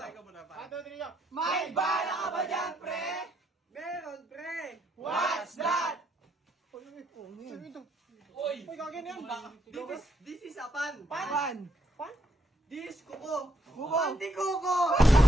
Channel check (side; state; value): both; normal; correlation 0.74